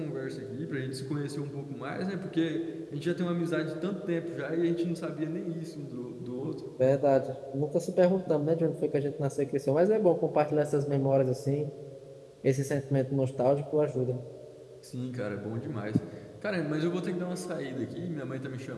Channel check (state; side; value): identical; both; correlation 1.00